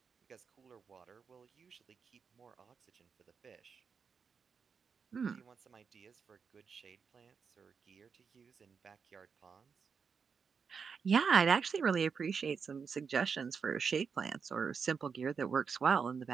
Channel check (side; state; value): left; quieter; 6.0 dB